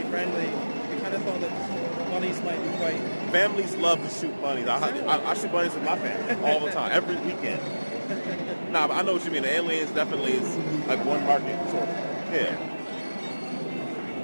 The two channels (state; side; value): inverted; both; correlation -1.00